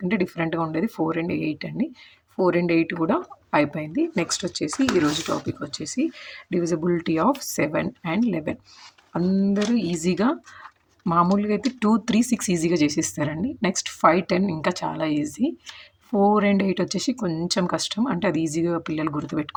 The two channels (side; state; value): both; identical; correlation 1.00